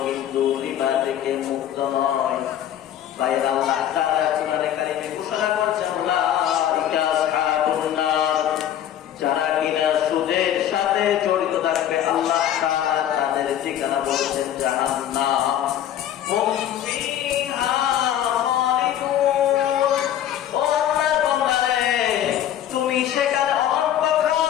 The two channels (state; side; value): quieter; right; 11.0 dB